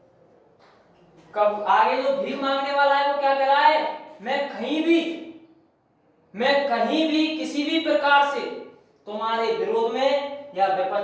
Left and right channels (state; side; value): identical; both; correlation 1.00